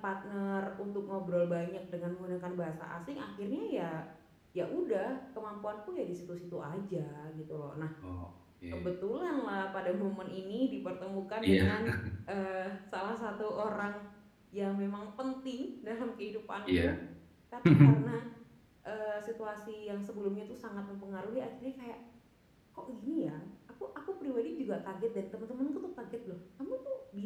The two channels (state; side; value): identical; both; correlation 1.00